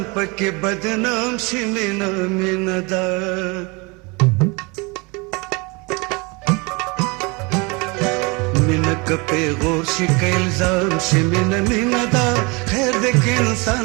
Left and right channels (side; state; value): left; quieter; 28.0 dB